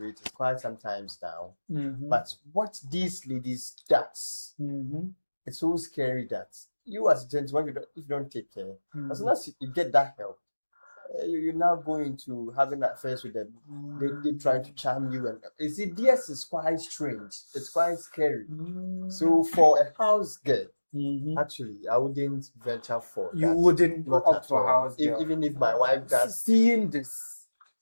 is quite sometimes down. But what these ladies does, it's so scary that you as a gentleman, if you don't take care, as soon as you get that help, you're now going to having affairs with them. They trying to charm you, and you see, this is quite strange. It's quite scary. So for a house girl, actually, I wouldn't venture for You that. wouldn't go Not up at to a all. house girl. Even if my wife does. Seeing this,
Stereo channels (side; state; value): both; inverted; correlation -1.00